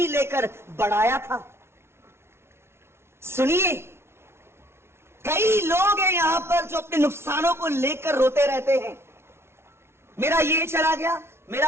लेकर बढ़ाया था। सुनिए, कई लोग हैं यहां पर जो अपने नुकसानों को लेकर रोते रहते हैं। मेरा ये चला गया,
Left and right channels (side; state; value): left; late; 0.12 ms